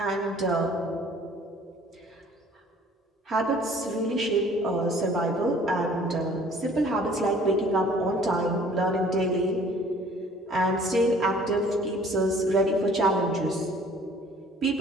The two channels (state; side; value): normal; both; correlation 0.54